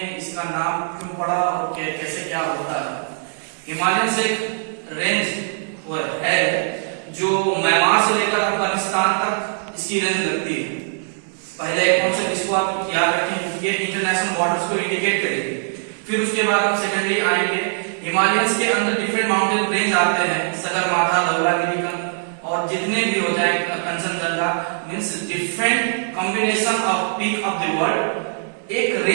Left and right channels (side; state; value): left; silent; digital silence